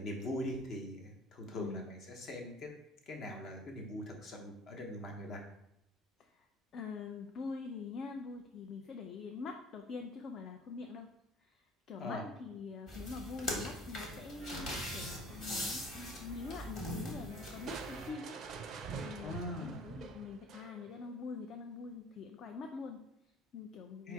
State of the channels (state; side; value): normal; both; correlation 0.48